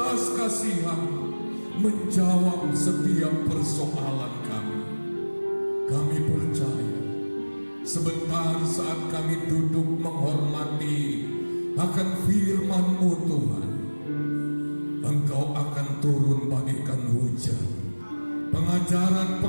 kasihan, menjawab setiap persoalan kami. Kami percaya sebentar saat kami duduk menghormati akan firman-Mu Tuhan, Engkau akan turun bagaikan hujan.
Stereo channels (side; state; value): both; inverted; correlation -1.00